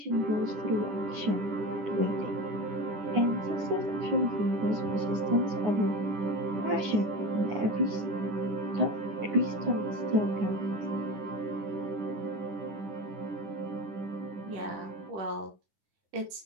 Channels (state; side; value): late; left; 9.7 ms